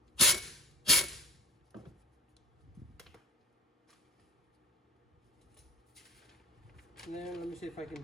And then let me see if I can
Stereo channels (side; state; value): both; normal; correlation 0.37